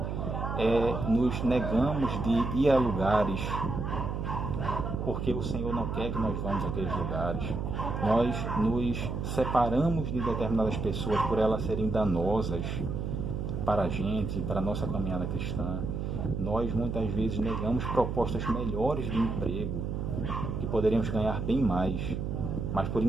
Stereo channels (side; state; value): right; noise; hum, 3 dB below the sound